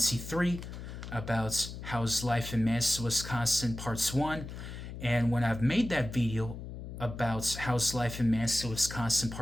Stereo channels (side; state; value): left; noise; hum, 10 dB below the sound